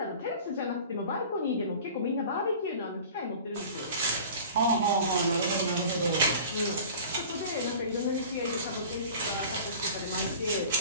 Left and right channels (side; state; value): both; inverted; correlation -0.41